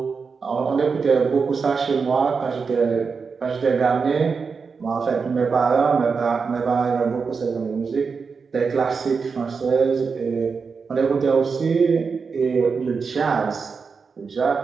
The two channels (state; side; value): quieter; left; 5.2 dB